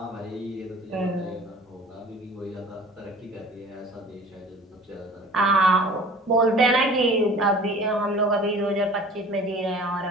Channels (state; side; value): normal; both; correlation 0.45